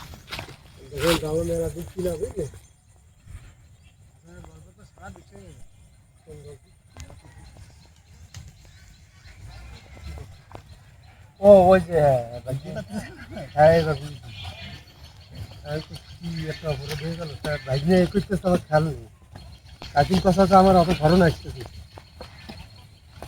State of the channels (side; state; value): both; identical; correlation 1.00